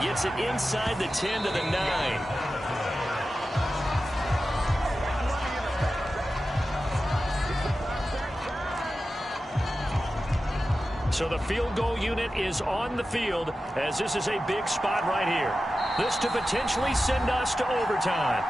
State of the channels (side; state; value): both; normal; correlation 0.93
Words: gets it inside the 10 to the 9. So the field goal unit is on the field as this is a big spot right here. This to potentially send us to overtime.